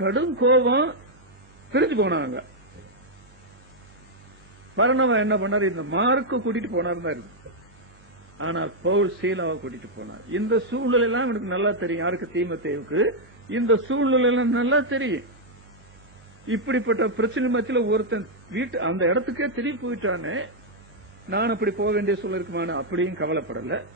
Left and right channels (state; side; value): normal; both; correlation -0.03